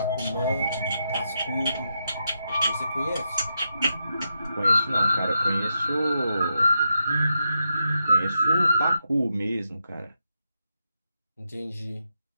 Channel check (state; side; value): inverted; both; correlation -0.84